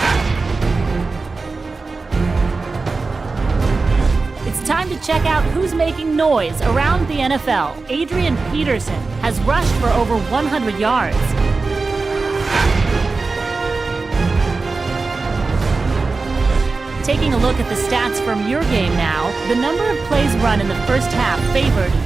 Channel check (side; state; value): left; quieter; 3.9 dB